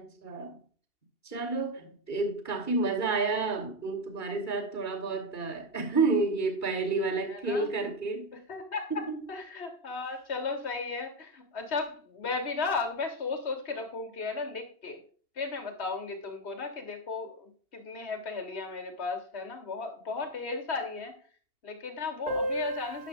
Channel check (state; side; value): late; right; 2.8 ms